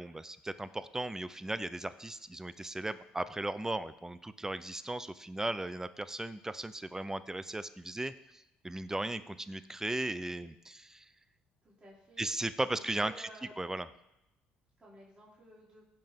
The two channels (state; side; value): normal; both; correlation 0.92